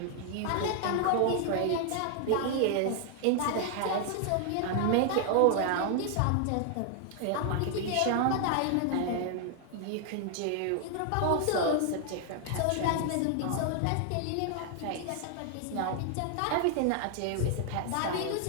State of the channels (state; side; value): different; both; correlation 0.00